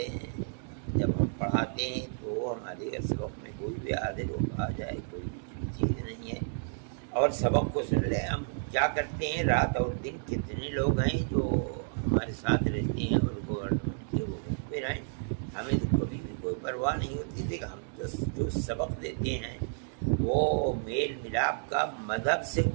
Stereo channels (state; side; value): silent; left; digital silence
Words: हैं। जब हम पढ़ाते हैं तो हमारे सबक में कोई भी हाजिर हो आ जाए, कोई भी चीज़ नहीं है। और सबक को सुन ले, हम क्या करते हैं, रात और दिन कितने लोग हैं जो हमारे साथ रहते हैं और गवर्नमेंट के वो पे रहें, हमें तो कभी भी कोई परवाह नहीं होती थी। हम तो जो सबक देते हैं वो मेल मिलाप का मज़हब से